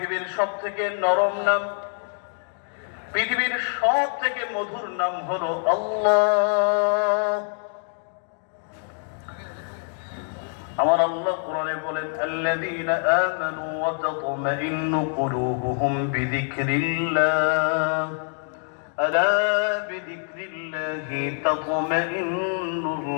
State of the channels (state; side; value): silent; right; 57 dB below the other